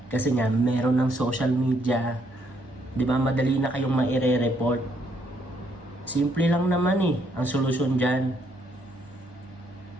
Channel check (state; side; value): normal; both; correlation 0.72